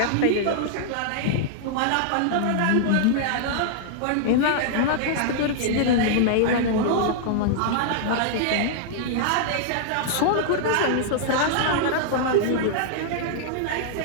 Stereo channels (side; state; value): both; different; correlation -0.01